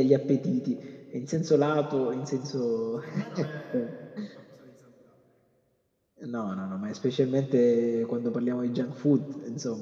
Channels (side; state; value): both; identical; correlation 1.00